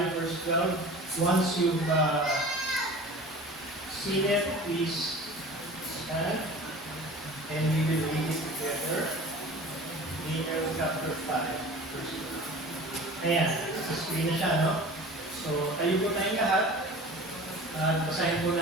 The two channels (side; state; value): both; normal; correlation 0.40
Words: verse 12. Once you've seen it, please stand and we will read it together. Daniel chapter 5 verse 12. Ayan, sa screen na siya, no? So, tayo po tayong lahat. Basahin po